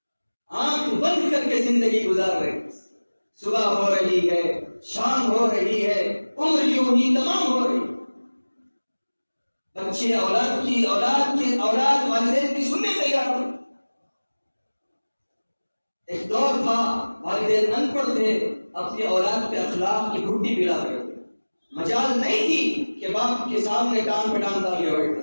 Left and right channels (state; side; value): inverted; both; correlation -1.00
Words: آنکھ بند کر کے زندگی گزار رہے. صبح ہو رہی ہے، شام ہو رہی ہے، عمر یوں ہی تمام ہو رہی. بچے اولاد والدین کی سننے تیار ہو. ایک دور تھا والدین ان پڑھ تھے، اپنی اولاد پہ اخلاق کی گھٹی پلا رہے تھے. مجال نہیں تھی کہ باپ کے سامنے کان پہ ٹانگ ڈال کے بیٹھتے،